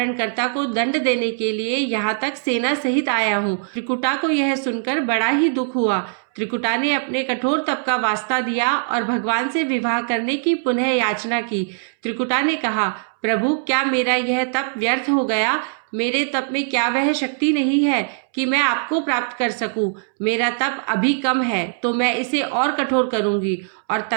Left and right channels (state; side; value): silent; left; 65 dB below the other